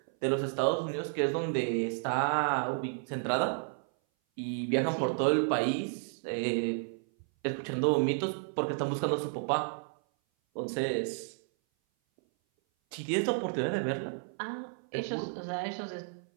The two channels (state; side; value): silent; left; 56 dB below the other